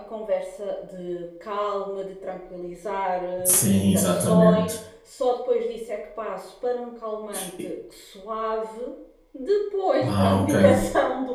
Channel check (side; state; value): both; identical; correlation 1.00